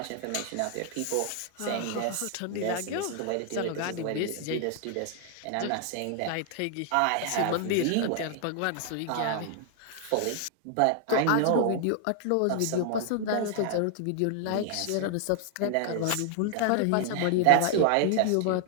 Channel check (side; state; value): both; different; correlation 0.00